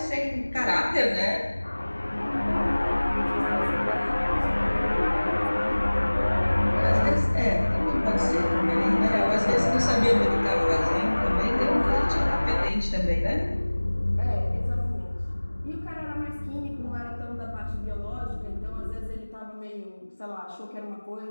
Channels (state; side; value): inverted; both; correlation -1.00